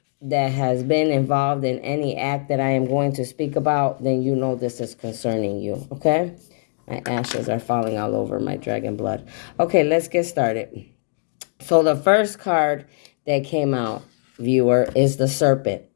has been involved in any act that I am going to speak about, then you know this is concerning you, okay? My ashes are falling all over my dragon blood. Okay, let's get started. So the first card that came out, viewer, is the serpent,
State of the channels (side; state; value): right; silent; digital silence